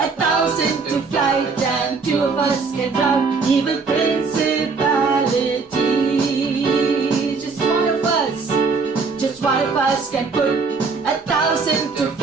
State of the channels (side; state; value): left; quieter; 4.6 dB